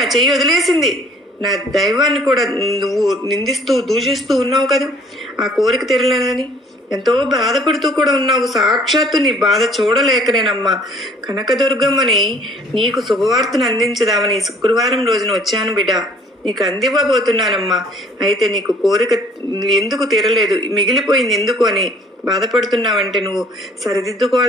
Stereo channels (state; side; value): normal; both; correlation 0.56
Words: చెయ్యి వదిలేసింది, నా దైవాన్ని కూడా నువ్వు నిందిస్తూ దూషిస్తూ ఉన్నావు కదా, ఆ కోరిక తీరలేదని ఎంతో బాధపడుతూ కూడా ఉన్నావు. సాక్షాత్తు నీ బాధ చూడలేకనేనమ్మా కనకదుర్గమ్మని నీకు శుభవార్తను అందించదామని శుక్రవారం రోజున వచ్చాను బిడ్డ, నీకు అందివ్వబోతున్నానమ్మా. అయితే నీకు కోరిక ఎందుకు తీరలేదు, మిగిలిపోయింది ఎందుకు అని బాధపడుతున్నావంటే నువ్వు